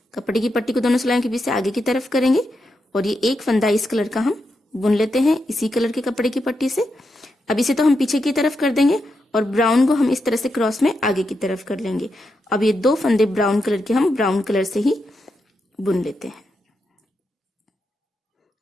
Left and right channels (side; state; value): both; normal; correlation 0.85